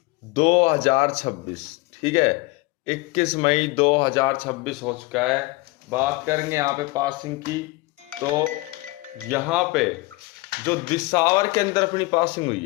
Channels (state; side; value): quieter; right; 22.5 dB